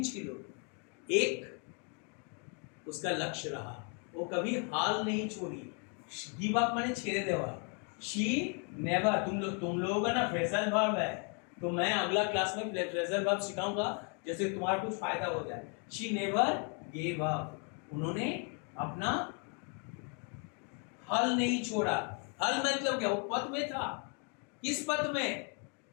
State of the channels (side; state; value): right; quieter; 35.5 dB